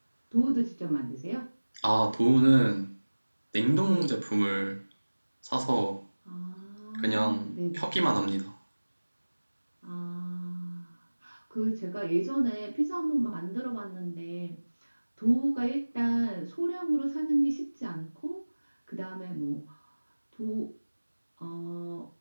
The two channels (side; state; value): both; inverted; correlation -1.00